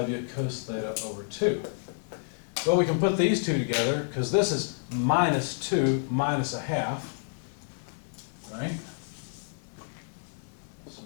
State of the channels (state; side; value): silent; right; digital silence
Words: cos theta over 2. Well, we can put these two together because this is minus 2 minus a half, right?